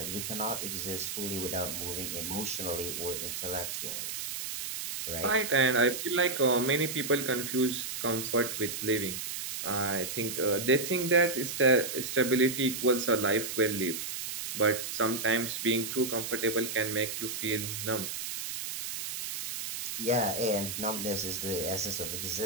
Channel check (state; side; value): noise; right; hiss, 5 dB below the sound